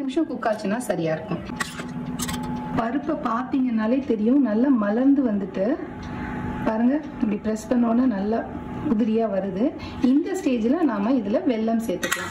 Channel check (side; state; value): both; identical; correlation 1.00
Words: நிமிஷம் குக் ஆச்சுன்னா சரியா இருக்கும். பருப்பை பாத்தீங்கன்னாலே தெரியும், நல்லா மலர்ந்து வந்துட்டு பாருங்க. இப்படி பிரஸ் பண்ணோன்னா நல்லா உதிரியா வருது. இந்த ஸ்டேஜ்ல நாம இதுல வெல்லம்